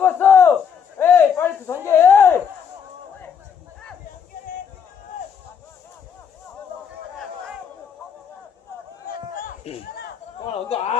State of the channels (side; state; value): right; quieter; 7.2 dB